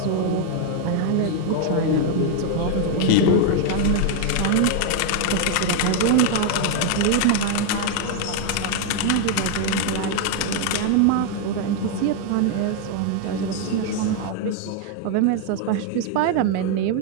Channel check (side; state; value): both; different; correlation 0.00